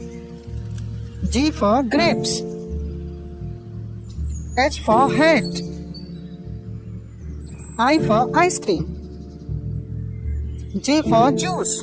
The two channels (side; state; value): both; identical; correlation 1.00